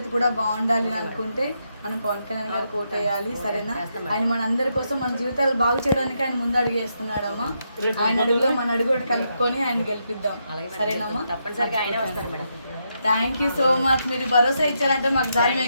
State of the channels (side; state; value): both; inverted; correlation -0.81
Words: కూడా బాగుండాలి అనుకుంటే మనం పవన్ కళ్యాణ్ గారు కోటేయాలి, సరేనా? ఆయన మన అందరి కోసం మన జీవితాలు బాగు చేయడానికి ఆయన ముందు అడుగు వేస్తున్నాడమ్మా. ఆయన అడుగులో మన అడుగు కలుపుకొని ఆయన గెలిపిద్దాం, సరేనమ్మా? తప్పనిసరిగా ఆయనే వస్తారు madam. Thank you so much. మీరు భరోసా ఇచ్చారంటే మాకు దారి